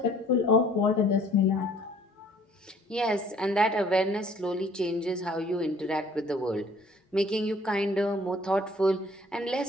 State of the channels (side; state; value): both; normal; correlation 0.56